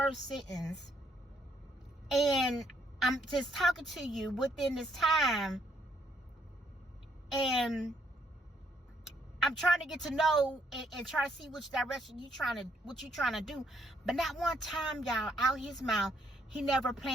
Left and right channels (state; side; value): normal; both; correlation 0.71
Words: sentence. And I'm just talking to you within this time. And I'm trying to get to know and try to see which direction what you trying to do. But not one time, y'all, out his mouth, he never